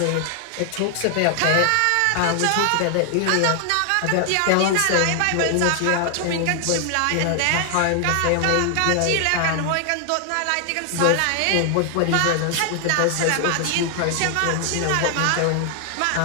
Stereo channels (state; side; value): different; both; correlation 0.00